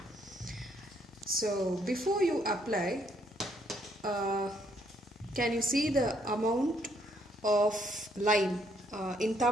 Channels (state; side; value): normal; both; correlation 0.70